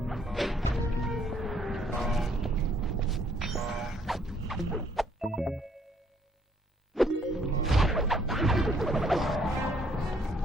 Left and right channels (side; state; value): both; normal; correlation 0.66